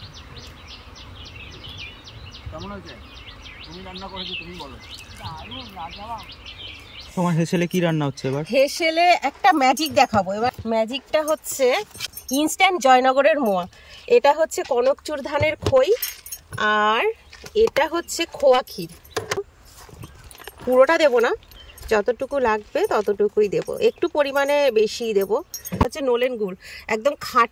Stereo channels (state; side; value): identical; both; correlation 1.00